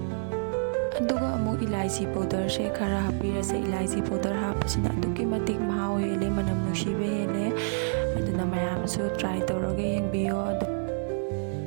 इलायची पाउडर से खरा हापीरसे इलायची पाउडर हापसिना अदुकी मतिक महाव हेले मनम नुसिबे हेले अदुना मयामसु ट्राई तौरगे यंगबियो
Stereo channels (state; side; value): silent; left; 59 dB below the other